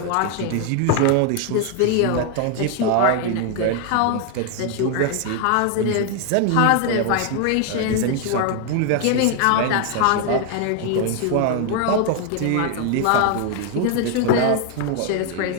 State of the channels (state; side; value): different; both; correlation 0.01